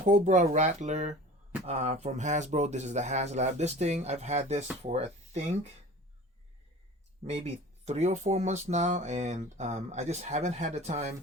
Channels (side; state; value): both; normal; correlation 0.41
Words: Rattler from Hasbro. This is the Haslab. This thing, I've had this for, I think, maybe 3 or 4 months now, and I just haven't had the